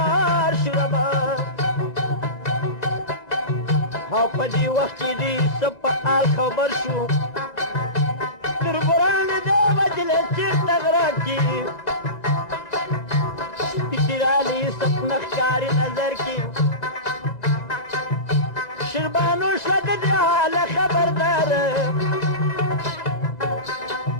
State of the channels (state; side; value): late; right; 1.9 ms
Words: شو ربه او په دې وخت کې دې څه په حال خبر شو تربران دې وجلې چېرته غره کې سپي رالی سپنه ښکاري نظر کې شیربانو شوه د دې حاله خبردار